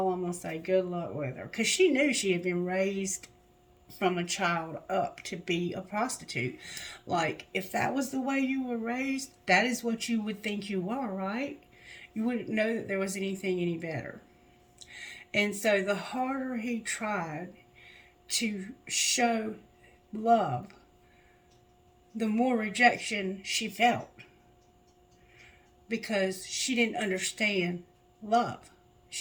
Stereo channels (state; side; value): identical; both; correlation 1.00